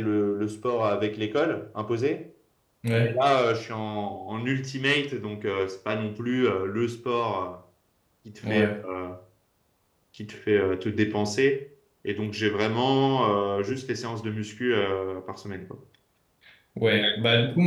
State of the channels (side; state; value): both; identical; correlation 1.00